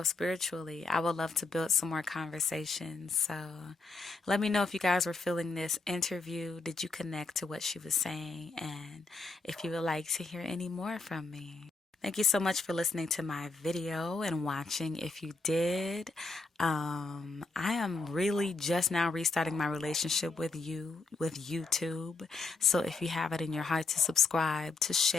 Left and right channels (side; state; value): right; quieter; 3.7 dB